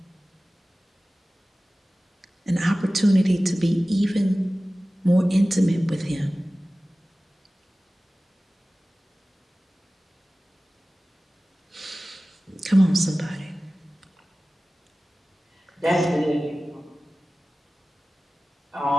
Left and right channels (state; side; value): normal; both; correlation 0.97